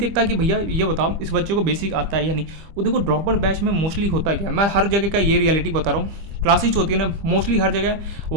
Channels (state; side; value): late; left; 25 ms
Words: कि भैया ये बताओ इस बच्चे को बेसिक आता है या नहीं। वो देखो ड्रॉपर बैच में मोस्टली होता क्या है, मैं हर जगह का ये रियलिटी बता रहा हूँ। क्लासेज होती है ना, मोस्टली हर जगह